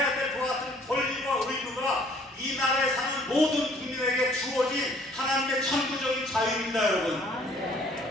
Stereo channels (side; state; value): both; normal; correlation 0.58